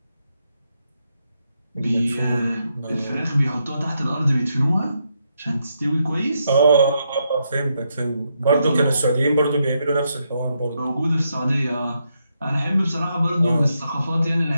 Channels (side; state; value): both; inverted; correlation -0.80